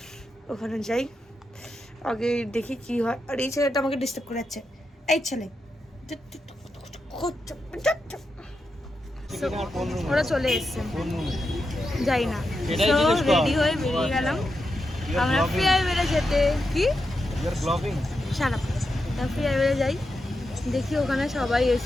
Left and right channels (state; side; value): normal; both; correlation 0.87